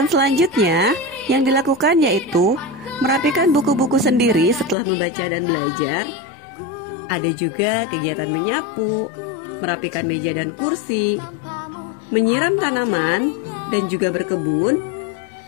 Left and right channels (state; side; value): drops out; right; at 4.8 s